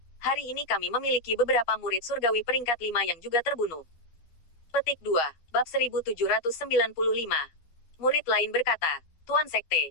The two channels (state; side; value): late; right; 12 ms